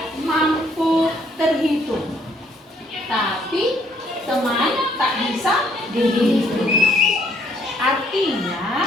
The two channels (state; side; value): normal; both; correlation 0.66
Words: mampu terhitung, tapi teman tak bisa dihitung. Artinya